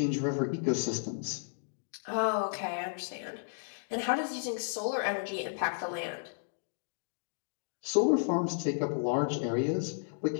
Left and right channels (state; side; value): silent; right; digital silence